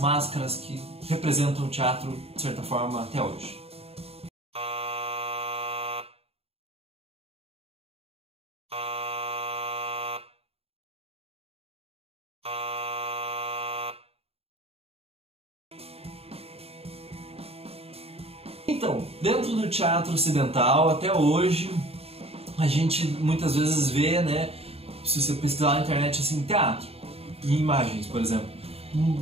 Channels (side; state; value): left; late; 0.29 ms